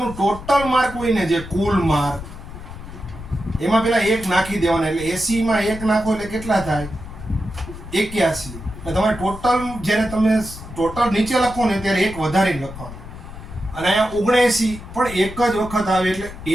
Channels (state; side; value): noise; left; rumble, 13 dB below the sound